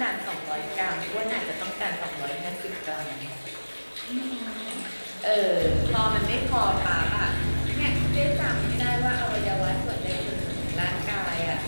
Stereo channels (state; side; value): inverted; both; correlation -1.00